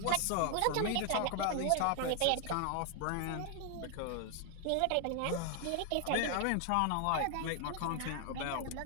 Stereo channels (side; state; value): both; different; correlation 0.00